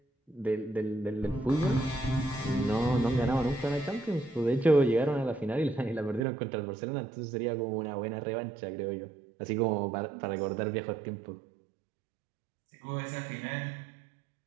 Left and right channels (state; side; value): drops out; left; at 6.2 s